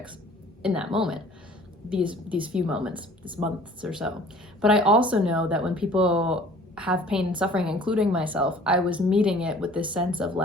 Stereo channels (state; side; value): normal; both; correlation 0.50